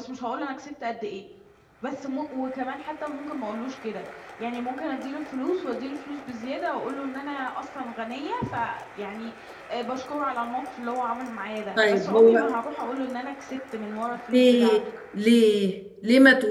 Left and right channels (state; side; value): identical; both; correlation 1.00